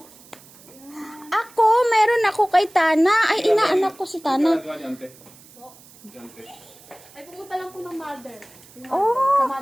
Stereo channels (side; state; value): right; noise; hiss, 24 dB below the sound